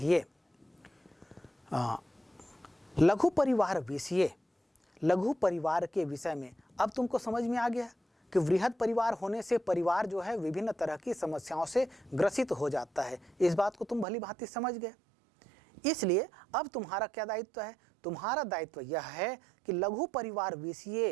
लघु परिवार विषय, लघु परिवार के विषय में अब तुमको समझ में आ गया कि वृहद परिवार होने से परिवार जो है विभिन्न तरह की समस्याओं से ग्रसित हो जाता है। इस बात को तुम भली भांति समझ गए। इसलिए अब तुम्हारा क्या दायित्व है? तुम्हारा दायित्व यह है कि लघु परिवार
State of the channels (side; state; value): left; drops out; at 14.1 s